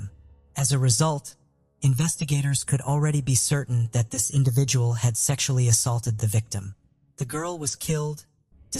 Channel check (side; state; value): both; identical; correlation 1.00